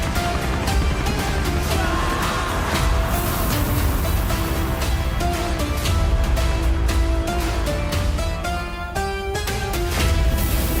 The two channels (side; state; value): both; identical; correlation 1.00